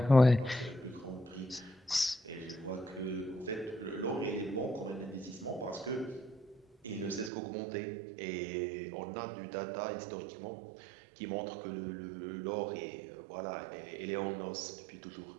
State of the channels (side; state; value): left; drops out; at 7.3 s